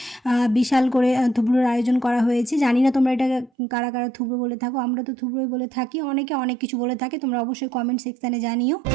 বিশাল করে থুবড়োর আয়োজন করা হয়েছে। জানি না তোমরা এটা কারা কারা থুবড়ো বলে থাকো, আমরা তো থুবড়োই বলে থাকি। অনেকে অনেক কিছু বলে থাকে, তোমরা অবশ্যই কমেন্ট সেকশানে জানিও।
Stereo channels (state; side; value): drops out; left; at 3.5 s